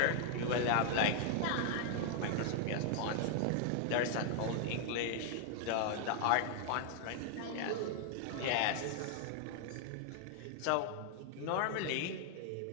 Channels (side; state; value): both; different; correlation 0.00